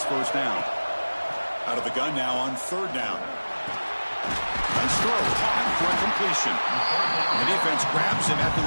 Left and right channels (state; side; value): inverted; both; correlation -1.00